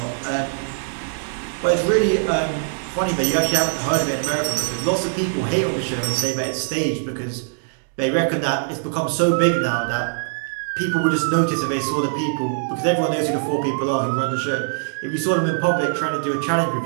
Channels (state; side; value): silent; left; digital silence